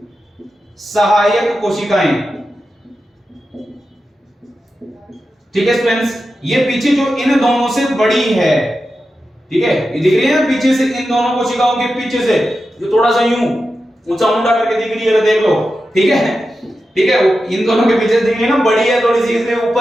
सहायक कोशिकाएं। ठीक है स्टूडेंट्स, ये पीछे जो इन दोनों से बड़ी है, ठीक है, ये दिख रही है ना पीछे से, इन दोनों कोशिकाओं के पीछे से जो थोड़ा सा यूं ऊंचा मुंडा करके दिख रही है, देख लो। ठीक है, ठीक है, इन दोनों के पीछे दिख रही है ना, बड़ी है थोड़ी सी, इसलिए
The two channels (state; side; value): normal; both; correlation 0.91